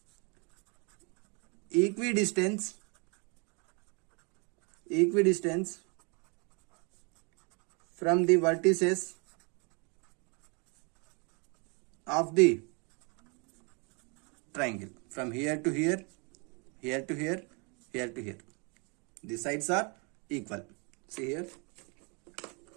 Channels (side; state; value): left; quieter; 32.8 dB